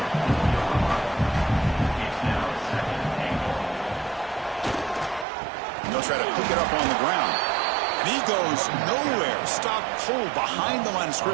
And they'll try to pick it up on the ground. And he goes nowhere. Stop pull behind the line of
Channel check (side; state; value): left; drops out; at 5.2 s